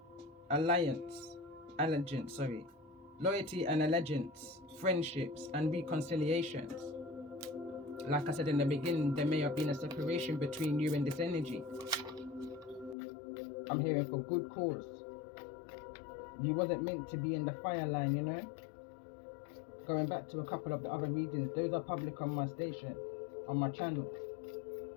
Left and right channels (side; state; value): right; drops out; at 13.0 s